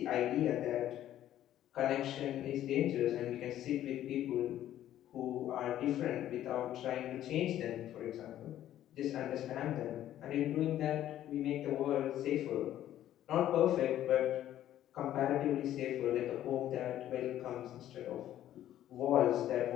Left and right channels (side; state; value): right; quieter; 12.3 dB